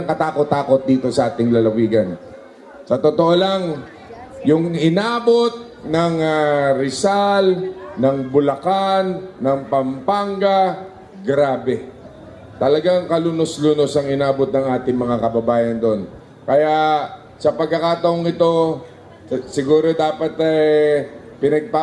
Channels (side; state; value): both; identical; correlation 1.00